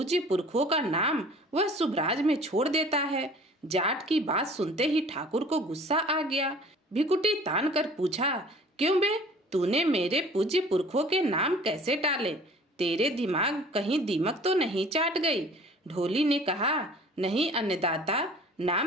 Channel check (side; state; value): both; normal; correlation 0.48